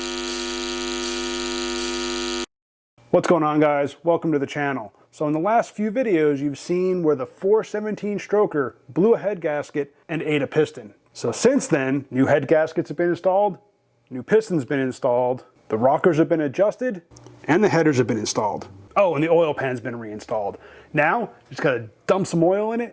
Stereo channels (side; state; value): both; identical; correlation 1.00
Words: What's going on, guys? Welcome to the channel. So in the last few videos, you've seen where the 417 stroker blew a head gasket and ate a piston. So since then, new head gaskets have been installed, new pistons been installed, the rockers have been adjusted, and the headers have been installed. Oh, and the oil pan's been reinstalled. Now, just gotta dump some oil in